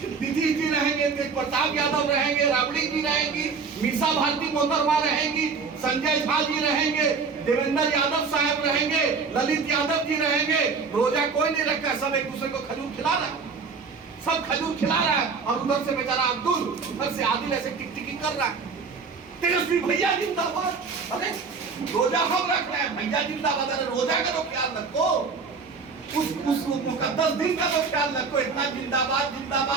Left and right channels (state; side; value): quieter; left; 5.1 dB